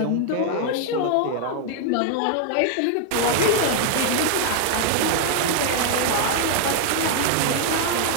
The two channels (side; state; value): both; different; correlation 0.00